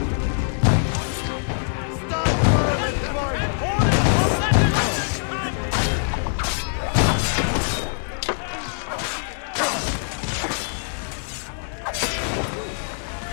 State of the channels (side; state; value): right; silent; digital silence